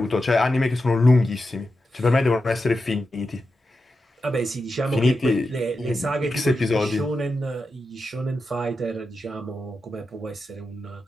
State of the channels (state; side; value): normal; both; correlation 0.89